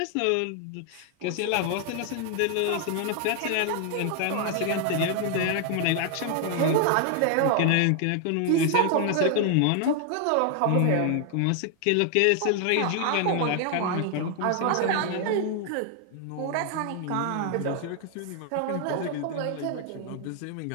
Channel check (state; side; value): different; both; correlation 0.00